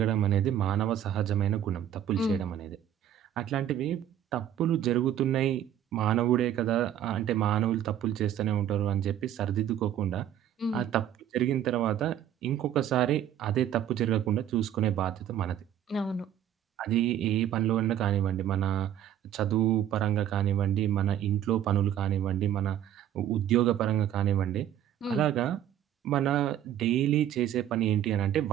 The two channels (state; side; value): quieter; left; 10.7 dB